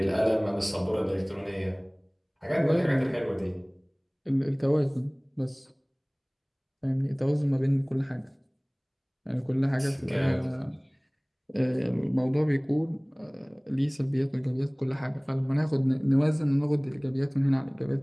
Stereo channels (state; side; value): identical; both; correlation 1.00